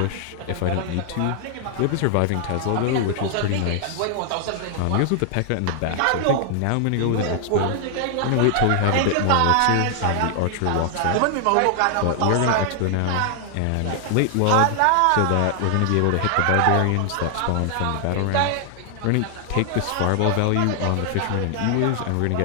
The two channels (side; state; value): both; different; correlation 0.00